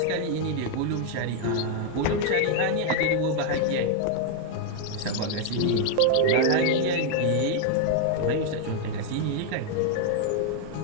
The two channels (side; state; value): both; different; correlation 0.00